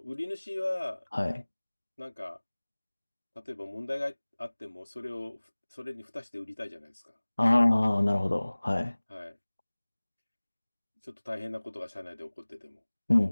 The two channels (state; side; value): inverted; both; correlation -1.00